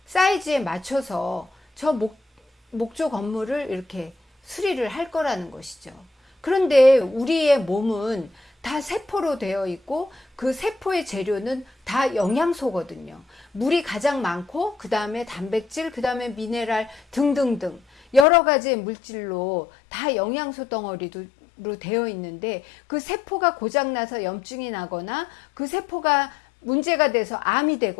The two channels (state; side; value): drops out; right; at 18.2 s